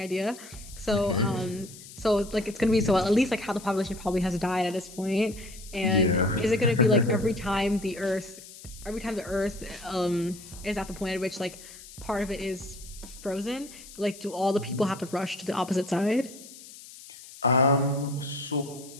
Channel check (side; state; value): left; noise; hiss, 17 dB below the sound